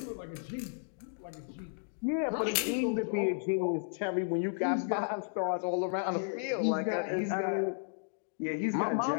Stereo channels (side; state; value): right; silent; digital silence